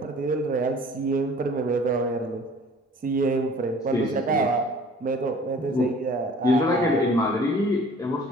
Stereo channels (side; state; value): both; normal; correlation 0.49